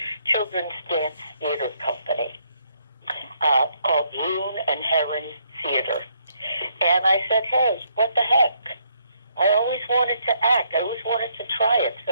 dance theater company called Loon and Heron Theater. And I said, hey, what the heck? I always wanted to act. I always wanted to try it.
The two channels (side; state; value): both; inverted; correlation -0.72